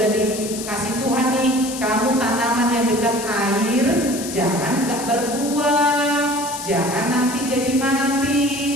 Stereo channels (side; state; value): left; noise; hiss, 9 dB below the sound